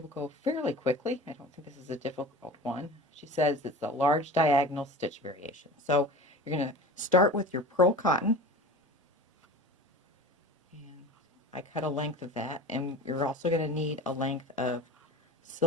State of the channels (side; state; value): both; normal; correlation 0.36